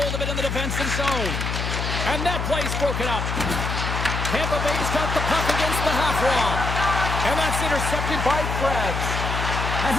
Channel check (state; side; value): noise; left; hum, 2 dB below the sound